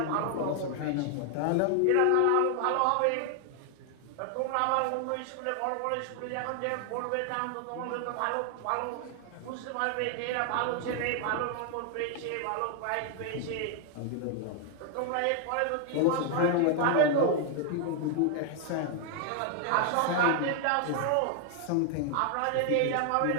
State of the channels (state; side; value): different; both; correlation 0.00